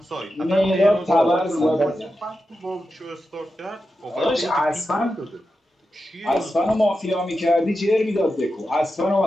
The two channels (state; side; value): normal; both; correlation 0.90